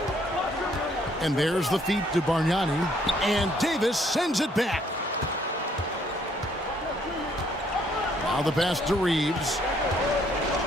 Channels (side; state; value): both; normal; correlation 0.66